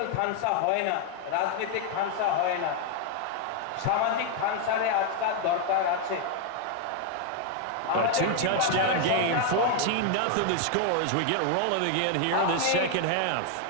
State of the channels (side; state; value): both; different; correlation 0.01